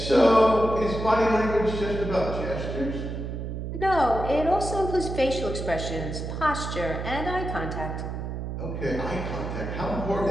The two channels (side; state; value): right; noise; hum, 5 dB below the sound